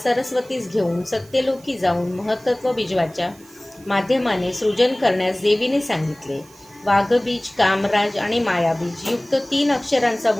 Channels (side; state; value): right; noise; hiss, 25 dB below the sound